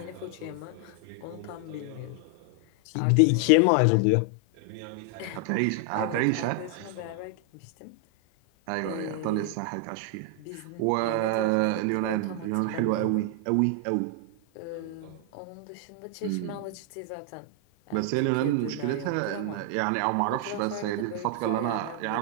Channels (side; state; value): both; different; correlation 0.00